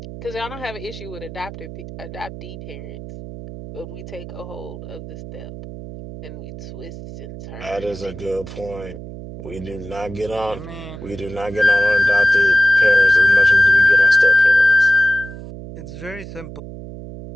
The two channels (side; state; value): right; noise; hum, 12 dB below the sound